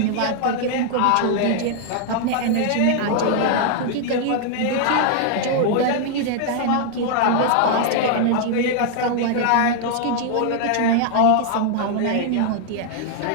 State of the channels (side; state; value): both; different; correlation -0.01